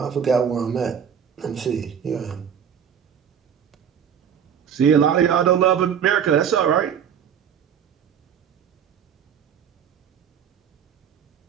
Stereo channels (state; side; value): quieter; left; 8.1 dB